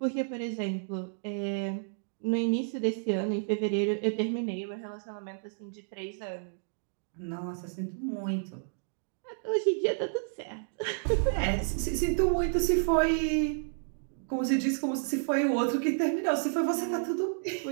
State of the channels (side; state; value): left; silent; digital silence